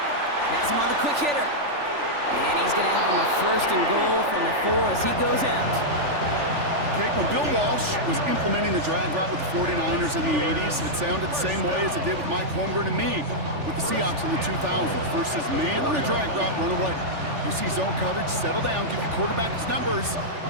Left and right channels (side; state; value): left; late; 3.4 ms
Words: Has him on the quick hitter. And he's going to have him a 1st and goal from the 4 as he goes out. Okay, when Bill Walsh was implementing the drag route with the 49ers in the 80s, it sounded the same way as it did with Mike Holmgren and me with the Seahawks in the 2000s. Versus man on a drag route, run away. You see zone coverage, settle down, give your quarterback his numbers,